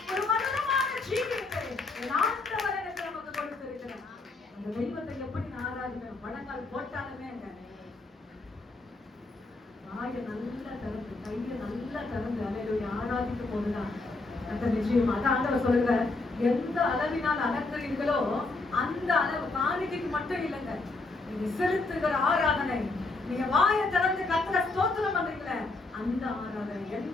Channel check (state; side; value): quieter; right; 3.4 dB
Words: ஒரு மதுரமான ஜீவியத்தை ஆண்டவர் எனக்கு நமக்கு கொடுத்திருக்கிறார். அந்த தெய்வத்தை எப்படி நான் ஆராதிக்கிறேன், வணங்கால் போட்டாலுமே வாயை நல்லா திறந்து, கையை நல்லா திறந்து அல்லேலூயா ஆராதிக்கும் போதுதான் அந்த நிச்சயம். அதான் ஆண்டவர் சொல்லுங்க, எந்த அளவினால் அலங்குறீர்களோ அந்த அளவு காணிக்கைக்கு மட்டும் இல்லைங்க, நீங்க செலுத்துகிற ஆராதனை, நீங்க வாயை திறந்து கர்த்தரை ஸ்தோத்திரம் பண்றீங்களே அந்த ஆராதனை,